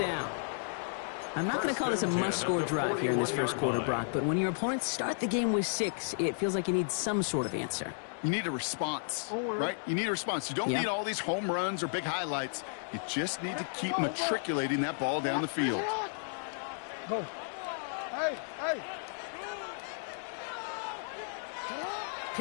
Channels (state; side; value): silent; right; digital silence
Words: I'm not going to call this a must-score drive here in this 1st quarter, Brock, but when your opponents start the game with 6, it feels like you need some sort of answer. You need a response, right? You need a response. You don't need all these home runs or big highlights. You just need to keep matriculating that ball down the field. Go. Hey.